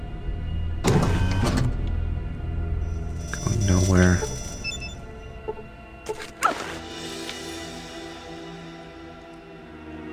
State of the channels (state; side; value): identical; both; correlation 1.00